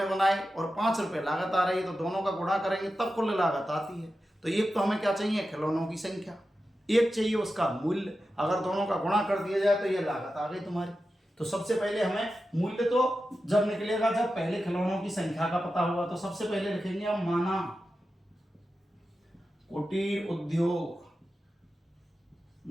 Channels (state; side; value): normal; both; correlation 0.91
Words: बनाए और 5 रुपए लागत आ रही है तो दोनों का गुणा करेंगे तब कुल लागत आती है। तो एक तो हमें क्या चाहिए, खिलौनों की संख्या, एक चाहिए उसका मूल्य, अगर दोनों का गुणा कर दिया जाए तो ये लागत आ गई तुम्हारी। तो सबसे पहले हमें मूल्य तो जब निकलेगा जब पहले खिलौनों की संख्या का पता होगा, तो सबसे पहले लिखेंगे हम माना कुटीर उद्योग